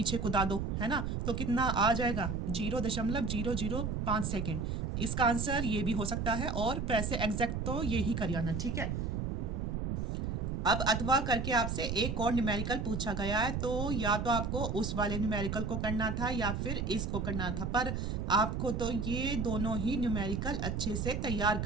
कुदा दो, है ना, तो कितना आ जाएगा 0.005 सेकेंड। इसका आंसर ये भी हो सकता है, और वैसे एग्जैक्ट तो ये ही करियाना, ठीक है। अब अथवा करके आपसे एक और न्यूमेरिकल पूछा गया है, तो या तो आपको उस वाले न्यूमेरिकल को करना था या फिर इसको करना था, पर आपको तो ये दोनों ही न्यूमेरिकल अच्छे से तैयार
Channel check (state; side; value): noise; right; rumble, 1 dB below the sound